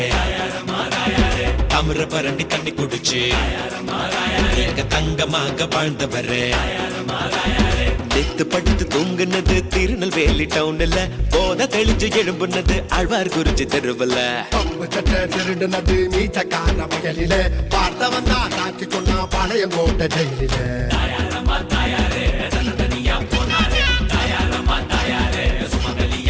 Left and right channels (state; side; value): identical; both; correlation 1.00